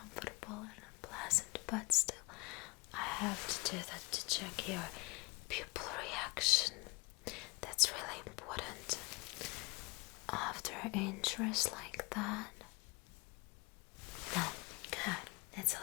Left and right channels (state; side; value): quieter; right; 25.1 dB